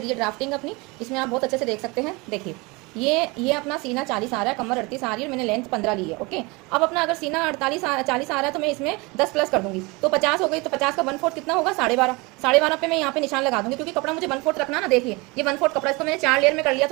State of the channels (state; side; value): quieter; left; 25.9 dB